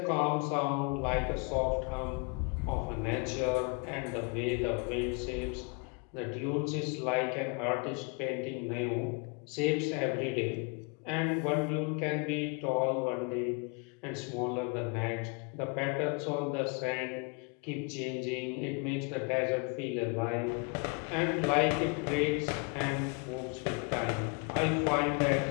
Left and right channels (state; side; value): quieter; right; 34.4 dB